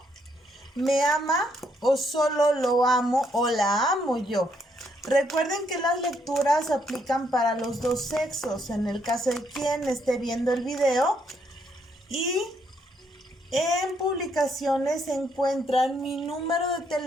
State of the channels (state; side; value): normal; both; correlation 0.73